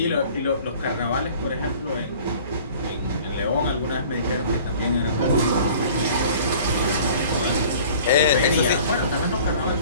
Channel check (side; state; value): both; inverted; correlation -0.48